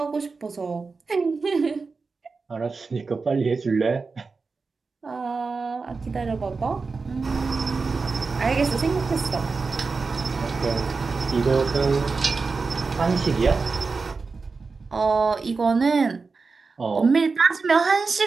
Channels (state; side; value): quieter; left; 4.4 dB